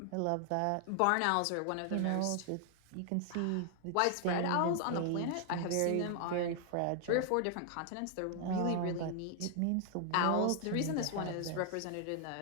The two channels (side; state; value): both; different; correlation 0.00